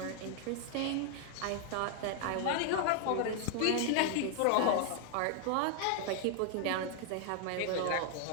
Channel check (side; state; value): both; different; correlation 0.00